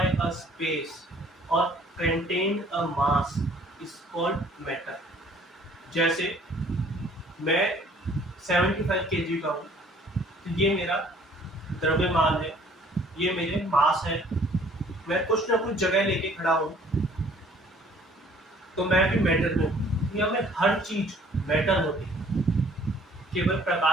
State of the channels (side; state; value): both; normal; correlation 0.57